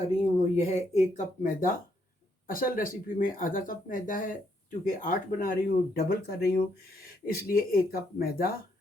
रही हूँ वो यह है 1 कप मैदा। असल रेसिपी में आधा कप मैदा है, चूँकि 8 बना रही हूँ, डबल कर रही हूँ, इसलिए 1 कप मैदा,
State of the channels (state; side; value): normal; both; correlation 0.74